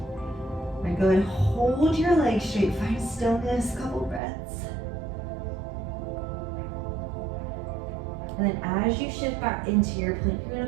All right, go ahead and hold your legs straight, find stillness, couple breaths. And then as you shift back into your plank, you're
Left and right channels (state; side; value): drops out; left; at 4.2 s